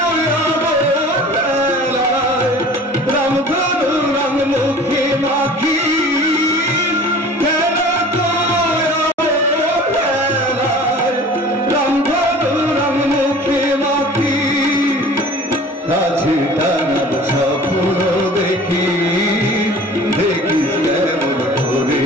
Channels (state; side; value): normal; both; correlation 0.44